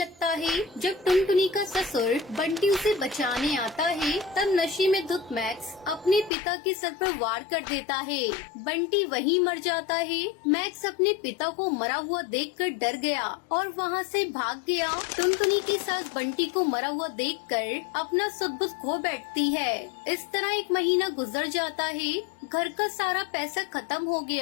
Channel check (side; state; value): right; drops out; at 6.3 s